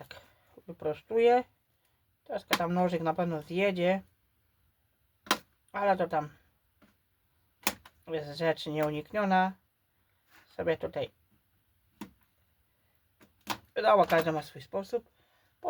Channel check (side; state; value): both; identical; correlation 1.00